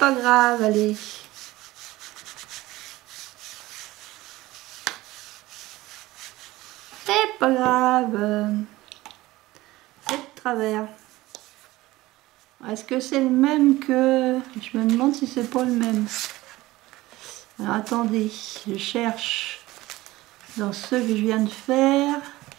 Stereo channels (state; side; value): quieter; left; 18.2 dB